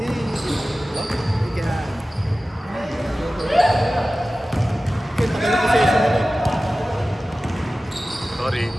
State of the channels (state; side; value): normal; both; correlation 0.96